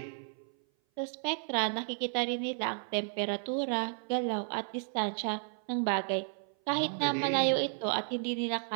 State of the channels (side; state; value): left; silent; 56 dB below the other